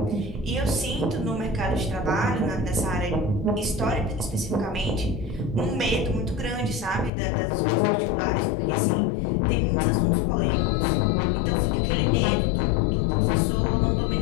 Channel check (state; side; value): drops out; right; at 7.1 s